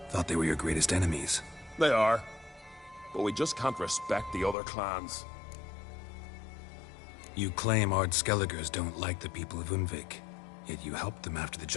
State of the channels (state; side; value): drops out; right; at 4.5 s